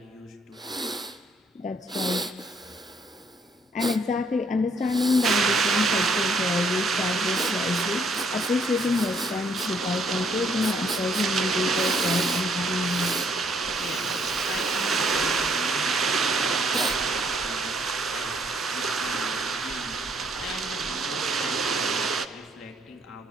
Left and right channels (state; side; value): normal; both; correlation 0.67